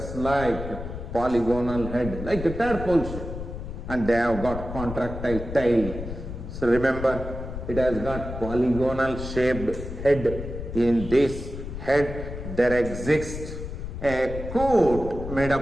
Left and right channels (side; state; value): left; noise; rumble, 8 dB below the sound